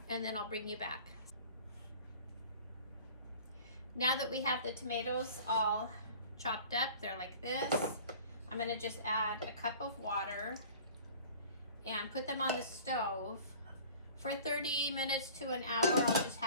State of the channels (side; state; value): both; inverted; correlation -0.45